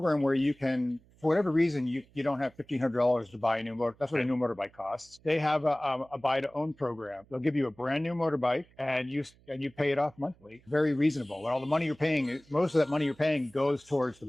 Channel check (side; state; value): right; noise; hum, 29 dB below the sound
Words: where you can, for whatever reason, you don't have $1,500 to buy a new motor. That's what a new motorbike costs. They have a buy to own program. They'll give you a brand new motorbike and you pay it off monthly. Very reasonable. And all the money you're paying, most of that money you're paying goes towards the